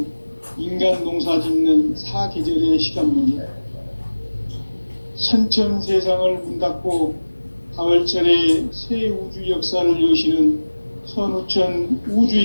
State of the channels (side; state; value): both; inverted; correlation -1.00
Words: 인간 농사 짓는 사계절의 시간문이다. 선천 세상을 문 닫고 가을철에 새 우주 역사를 여시는 선우천 우주